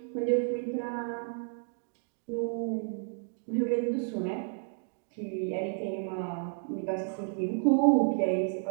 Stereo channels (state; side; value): silent; left; 57 dB below the other